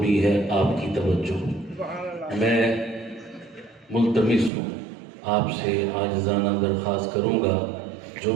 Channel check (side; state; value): left; drops out; at 4.5 s